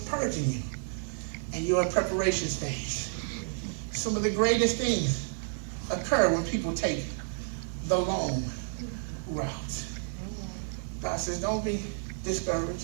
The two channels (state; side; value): silent; left; digital silence